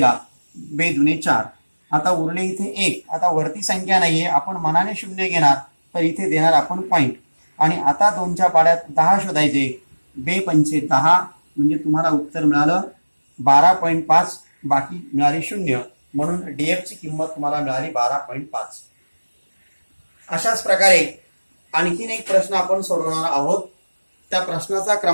बे दुने 4. आता उरले इथे 1. आता वरती संख्या नाहीये, आपण मनाने 0 घेणार, तर इथे देणार आपण पॉइंट. आणि आता 2च्या पाड्यात 10 शोधायचे, बे पंचे 10, म्हणजे तुम्हाला उत्तर मिळालं 12.5, बाकी मिळाली 0, म्हणून डीएफ ची किंमत तुम्हाला मिळाली 12.5. अशाच प्रकारे आणखीन एक प्रश्न आपण सोडवणार आहोत. त्या प्रश्नाचा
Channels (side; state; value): both; inverted; correlation -1.00